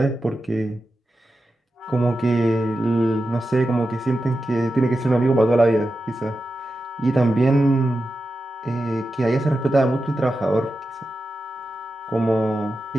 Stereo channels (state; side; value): normal; both; correlation 0.91